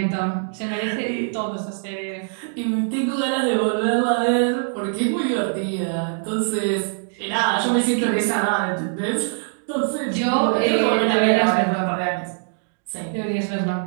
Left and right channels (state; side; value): silent; left; digital silence